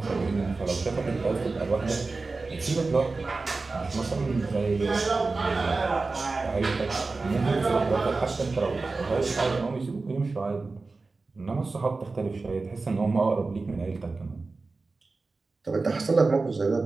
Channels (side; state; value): left; quieter; 3.8 dB